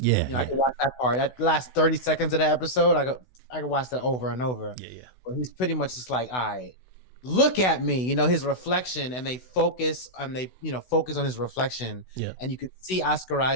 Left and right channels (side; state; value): right; late; 16 ms